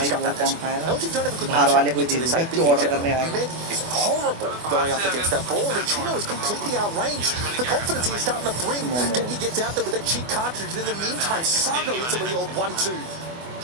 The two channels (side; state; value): left; late; 24 ms